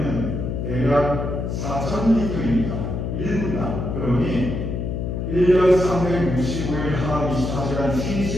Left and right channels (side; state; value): left; noise; hum, 3 dB below the sound